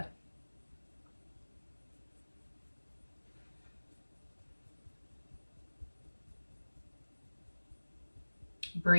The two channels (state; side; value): inverted; both; correlation -1.00